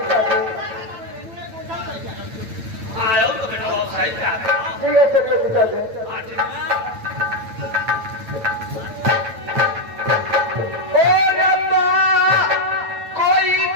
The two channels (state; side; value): late; left; 9.0 ms